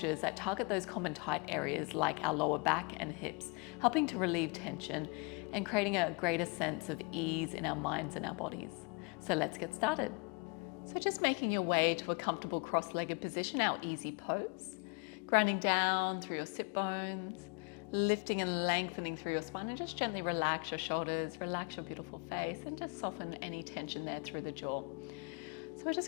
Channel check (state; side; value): quieter; right; 32.4 dB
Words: that target those common tight areas like our lower back and hips, helping to relieve tension and creating a greater sense of ease in our minds and our bodies. So let's get started. So just making your way to a comfortable cross-legged position, our easy pose, grounding down through your sit bones, lifting and lengthening through your spine, and just gently relax your shoulders, relax your beautiful face, and just soften any tension there through the jaw. So we're just